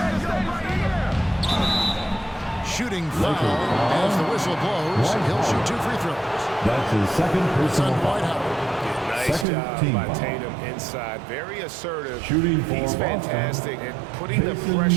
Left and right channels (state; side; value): drops out; left; at 9.5 s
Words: Shooting foul as the whistle blows. He'll shoot 2 free throws. That's his second personal White foul. Howard. Nice Second job team by foul. Tatum inside. Very assertive. Shooting for He's Boston. fantastic at putting the Jason